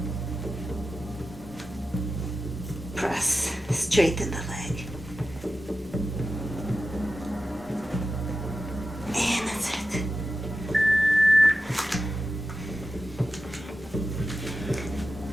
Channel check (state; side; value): normal; both; correlation 0.92